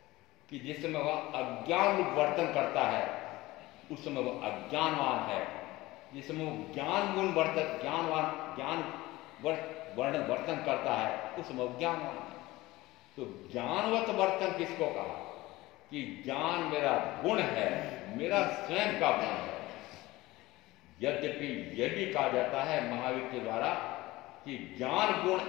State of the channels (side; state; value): right; quieter; 19.1 dB